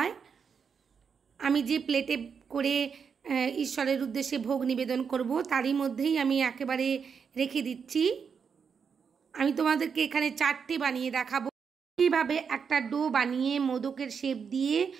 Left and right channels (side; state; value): left; quieter; 6.4 dB